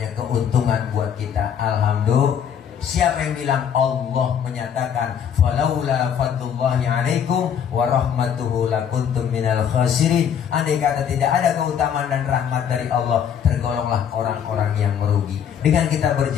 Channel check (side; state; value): right; quieter; 8.3 dB